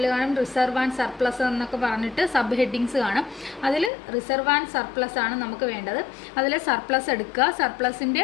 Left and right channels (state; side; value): drops out; right; at 3.9 s